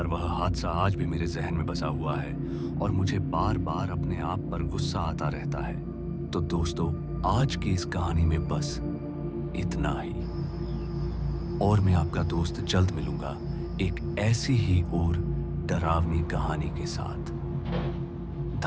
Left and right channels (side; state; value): both; identical; correlation 1.00